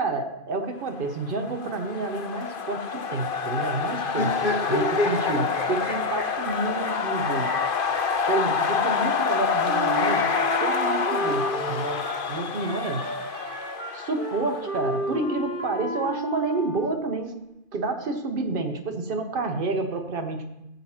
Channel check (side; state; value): left; late; 2.5 ms